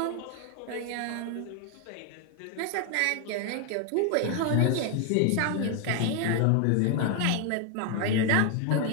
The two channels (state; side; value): different; both; correlation 0.00